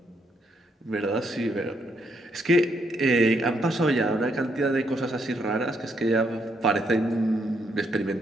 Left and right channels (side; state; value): both; normal; correlation 0.75